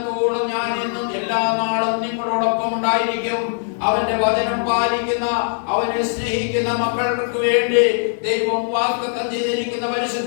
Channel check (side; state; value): right; silent; 65 dB below the other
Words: ഞാൻ എന്നും എല്ലാ നാളും നിങ്ങളോടൊപ്പം ഉണ്ടായിരിക്കും. അവന്റെ വചനം പാലിക്കുന്ന, അവനെ സ്നേഹിക്കുന്ന മക്കൾക്ക് വേണ്ടി ദൈവം വാഗ്ദത്തം ചെയ്തിരിക്കുന്ന